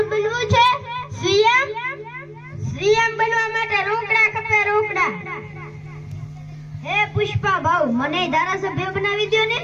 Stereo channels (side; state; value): both; identical; correlation 1.00